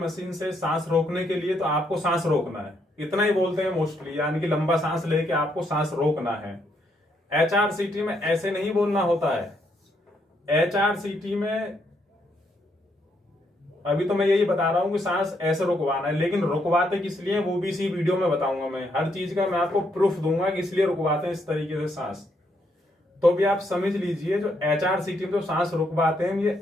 से सांस रोकने के लिए, तो आपको सांस रोकना है, इतना ही बोलते हैं मोस्टली, यानी कि लंबा सांस लेके आपको सांस रोकना है। HRCT में ऐसे नहीं बोलना होता है। HRCT में अभी तो मैं यही बता रहा हूं कि सांस ऐसे रुकवाना है, लेकिन रुकवाते किस लिए वो भी इसी वीडियो में बताऊंगा। मैं हर चीज का मैं आपको प्रूफ दूंगा कि इसलिए रुकवाते हैं इस तरीके से सांस। तो भी आप समझ लीजिए, जो HRCT में जो सांस रुकवाते हैं ये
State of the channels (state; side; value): normal; both; correlation 0.75